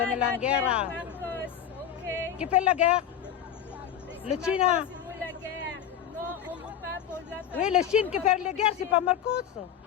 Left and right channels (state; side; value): quieter; right; 9.3 dB